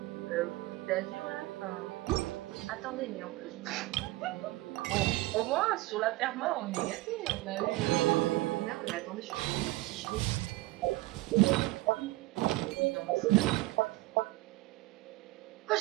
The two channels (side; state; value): left; quieter; 19.7 dB